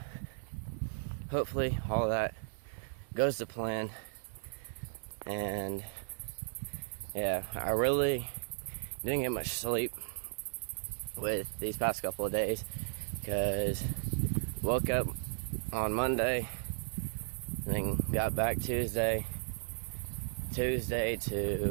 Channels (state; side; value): silent; left; 54 dB below the other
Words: hopefully all that goes to plan. And yeah, I really didn't get much sleep with these past couple of days, because woke up on Monday, then got back Tuesday